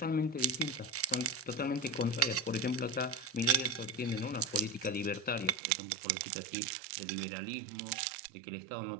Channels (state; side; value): drops out; left; at 5.6 s